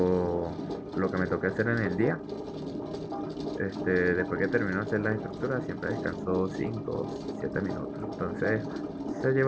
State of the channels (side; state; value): both; identical; correlation 1.00